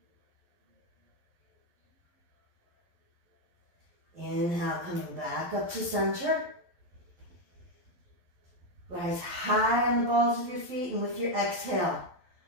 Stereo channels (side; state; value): left; late; 11 ms